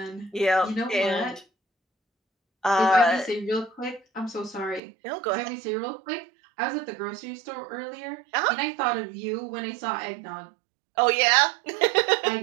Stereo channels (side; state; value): left; drops out; at 4.8 s